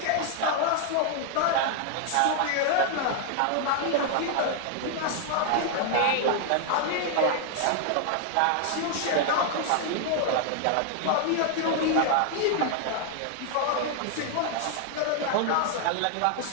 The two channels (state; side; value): different; both; correlation 0.00